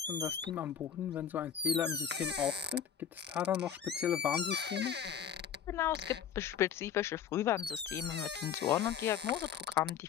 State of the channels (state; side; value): quieter; right; 8.4 dB